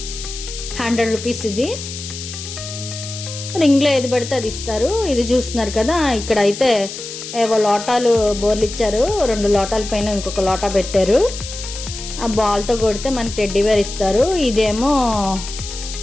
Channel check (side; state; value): left; noise; hiss, 10 dB below the sound